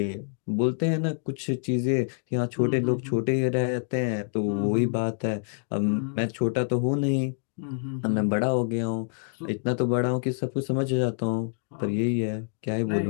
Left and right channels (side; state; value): right; silent; digital silence